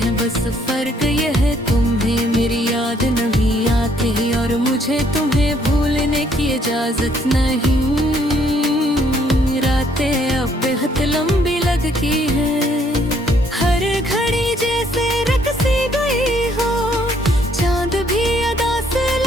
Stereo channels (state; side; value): normal; both; correlation 0.66